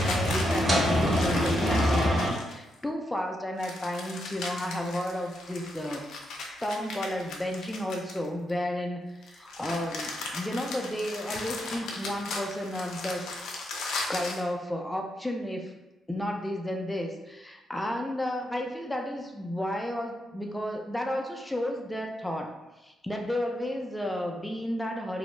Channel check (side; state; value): both; normal; correlation 0.83